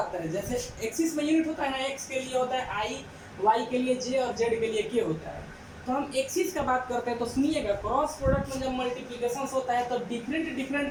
करें, जैसे एक्सिस में यूनिट होता है ना, एक्स के लिए होता है आई, वाई के लिए जे और जेड के लिए के होता है। तो हम एक्सिस का बात करते हैं, तो सुनिएगा क्रॉस प्रोडक्ट में जब मल्टीप्लिकेशन होता है तो डिफरेंट डिफरेंट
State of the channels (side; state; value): both; identical; correlation 1.00